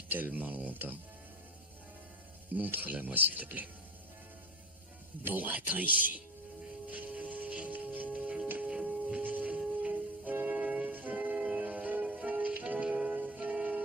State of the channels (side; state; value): both; normal; correlation 0.31